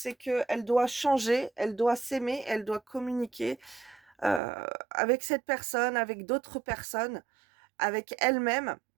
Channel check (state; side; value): drops out; left; at 4.4 s